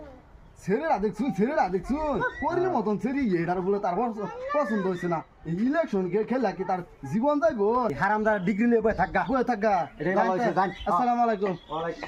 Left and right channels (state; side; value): identical; both; correlation 1.00